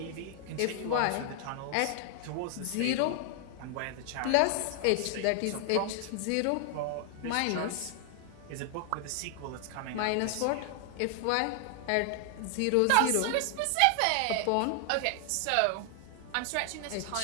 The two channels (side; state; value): both; different; correlation 0.00